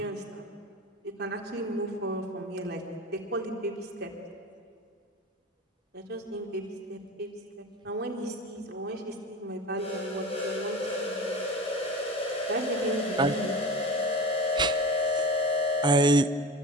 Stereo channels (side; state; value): both; normal; correlation 0.31